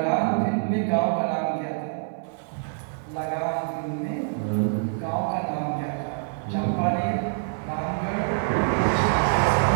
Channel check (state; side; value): silent; left; 59 dB below the other